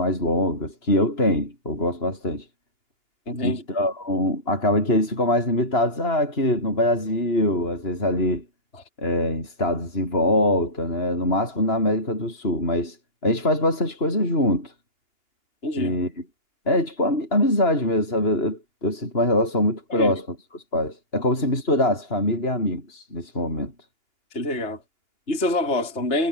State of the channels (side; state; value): right; late; 2.8 ms